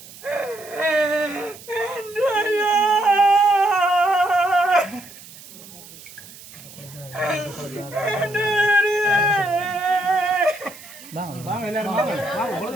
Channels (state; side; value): noise; right; hiss, 18 dB below the sound